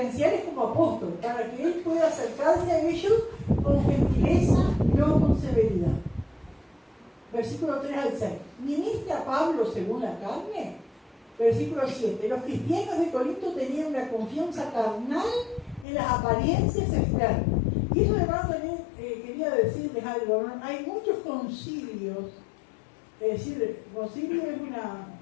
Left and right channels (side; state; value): right; drops out; at 15.9 s